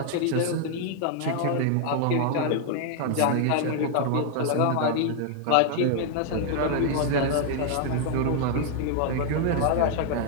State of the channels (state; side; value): different; both; correlation 0.00